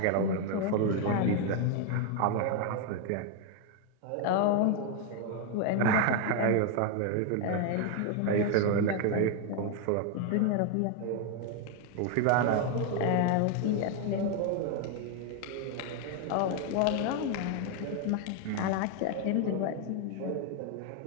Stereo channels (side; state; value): both; different; correlation 0.01